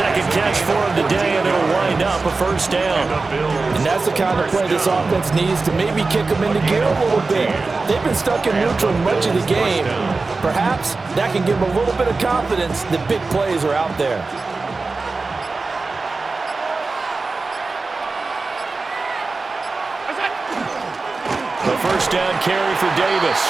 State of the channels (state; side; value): quieter; left; 3.8 dB